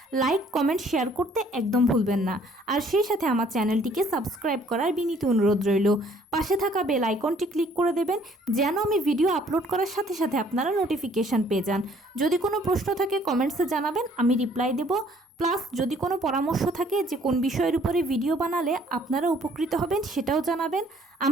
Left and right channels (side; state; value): both; normal; correlation 0.60